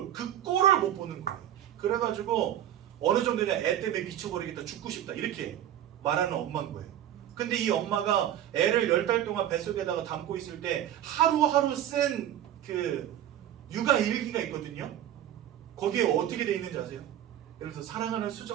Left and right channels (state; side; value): quieter; left; 11.4 dB